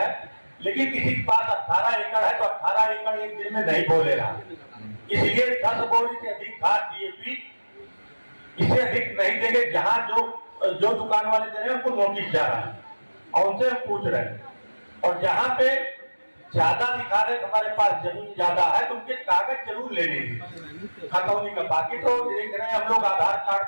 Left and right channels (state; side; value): inverted; both; correlation -1.00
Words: लेकिन किसी के पास 18 एकड़ है तो 18 एकड़ एक दिन में नहीं बोले रहा, इसलिए 10 बोरी से अधिक खाद डीएपी इससे अधिक नहीं देंगे। जहां जो दुकान वाले दे रहे हैं उनको नोटिस जा रहा है और उनसे हम पूछ रहे हैं। और जहां पे ज्यादा दिखा रहे हमारे पास जमीन ज्यादा है तो उनके कागज जरूर ले लेंगे खतौनी का। बाकी तो देख रहे हैं हम लोग आधार कार्ड